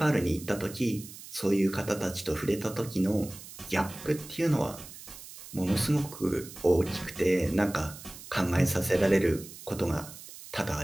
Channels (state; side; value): noise; right; hiss, 15 dB below the sound